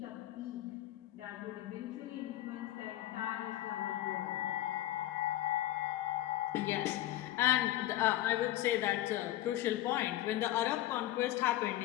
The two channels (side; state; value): right; quieter; 14.6 dB